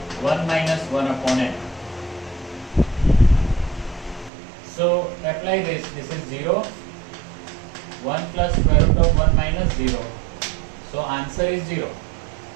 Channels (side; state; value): left; drops out; at 4.3 s